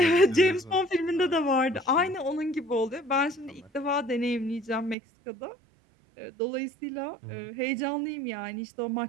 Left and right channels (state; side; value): drops out; left; at 5.0 s